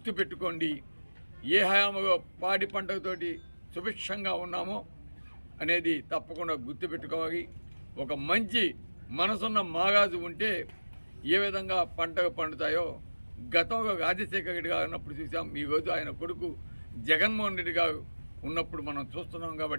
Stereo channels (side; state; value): both; inverted; correlation -1.00